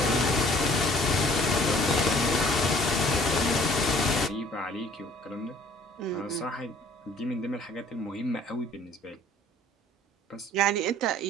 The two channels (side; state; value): both; normal; correlation 0.55